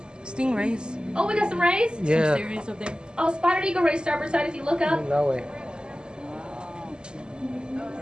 Stingrays. Oh, we got some rays? Yeah. Some stingrays up there. Oh, spotted eagle ray starboard side if you look up. That way.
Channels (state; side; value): late; left; 0.048 ms